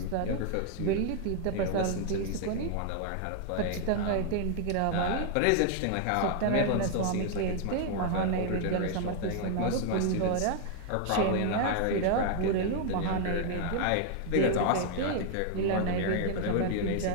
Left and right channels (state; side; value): different; both; correlation 0.00